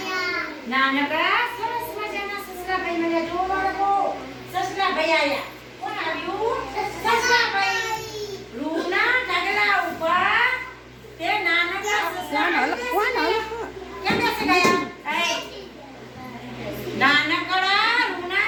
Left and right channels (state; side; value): identical; both; correlation 1.00